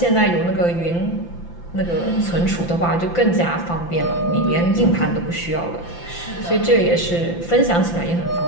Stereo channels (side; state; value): right; late; 5.9 ms